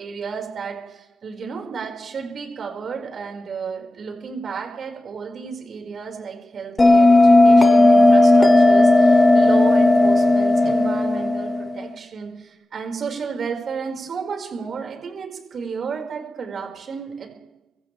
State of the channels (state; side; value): normal; both; correlation 0.95